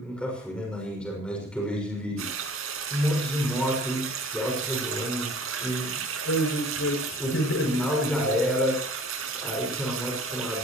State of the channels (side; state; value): both; normal; correlation 0.48